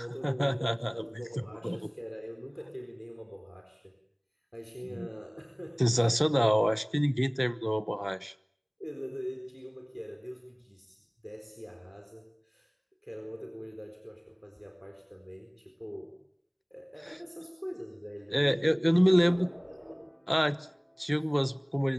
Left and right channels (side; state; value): both; identical; correlation 1.00